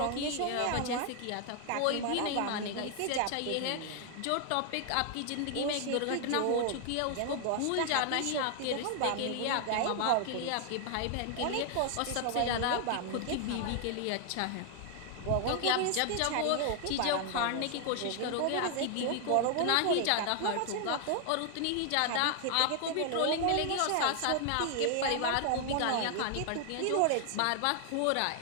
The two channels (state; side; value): different; both; correlation 0.00